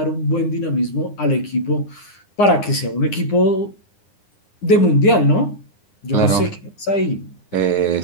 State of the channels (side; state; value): right; late; 9.8 ms